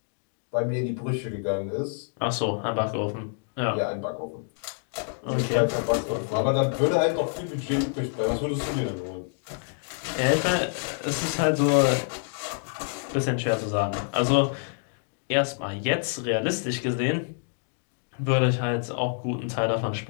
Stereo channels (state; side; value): silent; right; 60 dB below the other